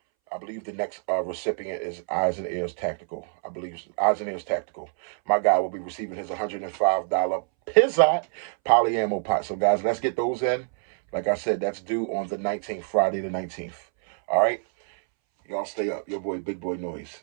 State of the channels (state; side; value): silent; left; 61 dB below the other